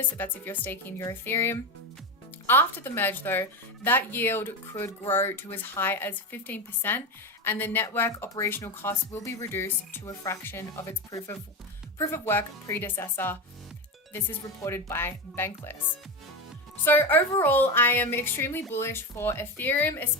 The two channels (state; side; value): normal; both; correlation 0.17